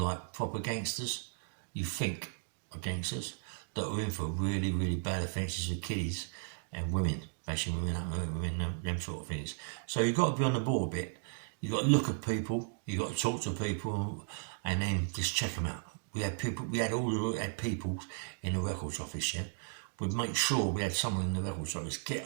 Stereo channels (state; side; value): silent; left; digital silence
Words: proper gangsters, you think are gangsters, that are in for really, really bad offences with kiddies and women, bashing women up, them sort of things. So you've got to be on the ball a bit. You've got to look at people, you've got to talk to people, and then just check them out. We had people in the records office, yeah? We'd make sure we had someone in the records office,